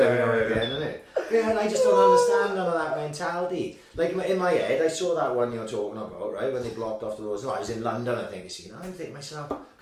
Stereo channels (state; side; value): identical; both; correlation 1.00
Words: now and again, isn't it? Yeah, and I just don't understand none of that mentality. Like in my head, I saw that one you're talking about, right? When they blocked off the roads. No, I was in London, I think. You know, I think myself,